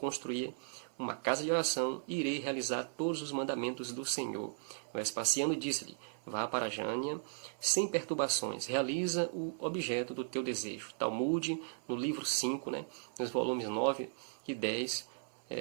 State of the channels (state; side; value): silent; left; 53 dB below the other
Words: uma casa de oração e irei realizar todos os mandamentos do Senhor. Vespasiano disse-lhe: vá para Jânia sem perturbações, realiza o objeto do teu desejo. Talmud, no livro 5, né, nos volumes 9 e 10,